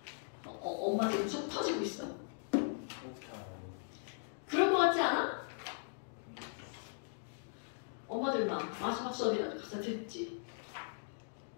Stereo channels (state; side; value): silent; right; digital silence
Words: 엄마 지금 속 터지고 있어. 그럴 것 같지 않아? 엄마들만 마지막 수업이라도 가서 듣지.